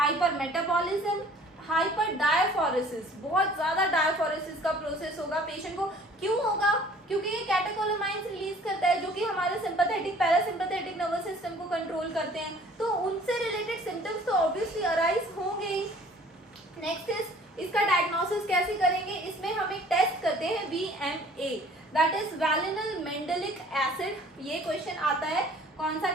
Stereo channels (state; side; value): normal; both; correlation 0.52